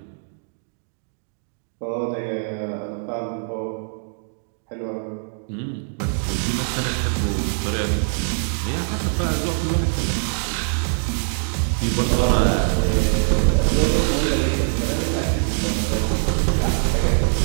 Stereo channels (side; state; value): left; silent; digital silence